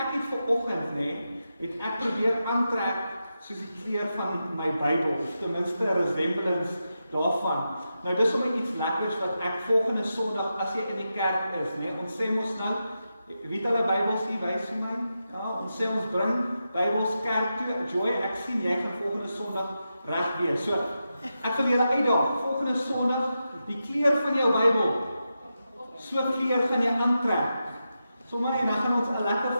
het vanoggend, het ek probeer aantrek soos die kleur van my Bybel, of ten minste 'n resemblance daarvan. Nou dis sommer iets lekkers wat ek volgende Sondag as jy in die kerk is, ons sê mos nou, wie het hulle Bybels hier wys vir my? Ja, ons sê ons bring Bybels kerk toe. Joy, ek sien jy gaan volgende Sondag reg wees. So, ek wil julle uitdaag, volgende Sondag, die kleur van jou Bybel, so kleur gaan jy aantrek. Sommige en dan gaan ons 'n lekker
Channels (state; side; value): inverted; both; correlation -0.89